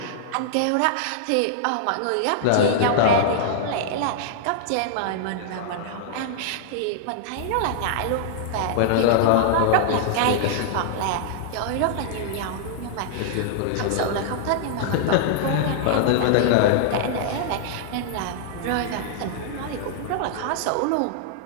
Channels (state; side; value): different; both; correlation -0.01